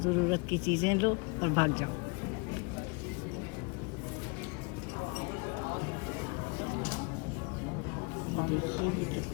ज़रूरत की चीज़ें लो और भाग जाओ। देखिए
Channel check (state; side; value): quieter; right; 31.4 dB